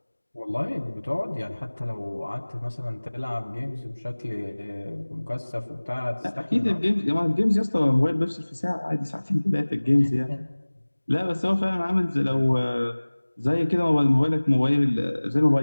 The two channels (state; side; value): inverted; both; correlation -1.00